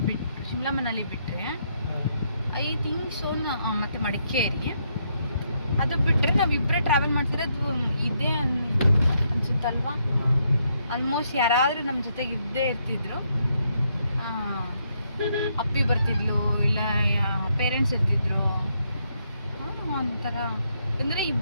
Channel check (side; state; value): both; inverted; correlation -0.76